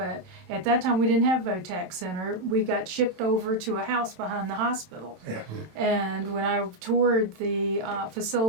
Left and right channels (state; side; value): late; left; 27 ms